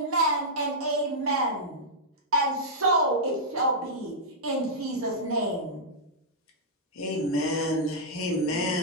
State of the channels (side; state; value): both; normal; correlation -0.09